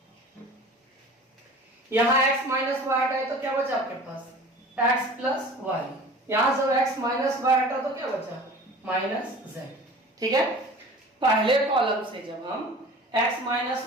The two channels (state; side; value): normal; both; correlation 0.42